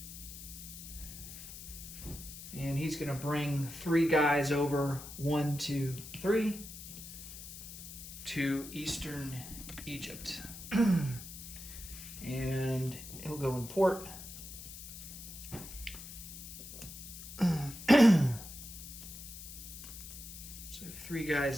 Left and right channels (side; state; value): left; noise; hiss, 12 dB below the sound